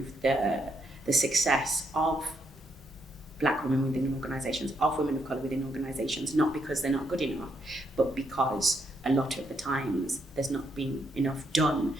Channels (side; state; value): both; normal; correlation 0.76